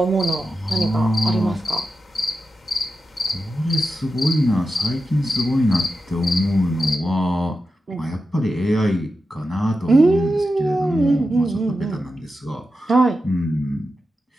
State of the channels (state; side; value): normal; both; correlation 0.90